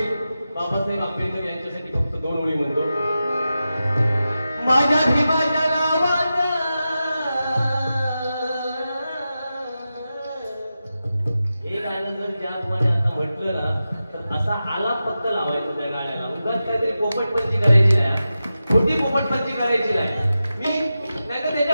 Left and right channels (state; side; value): inverted; both; correlation -0.92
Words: बाबासाहेब आंबेडकर यांच्यासाठी फक्त 2 ओळी म्हणतो. माझ्या भीमाच्या नावात हे गाणं जर ज्याप्रमाणे आता म्हटलं ना तर असा आलाप फक्त लावायचं त्या गाण्याला. उगाच काहीतरी पोपटपंची करायची नाही, खोटी पोपटपंची करायची नाही. नाही तर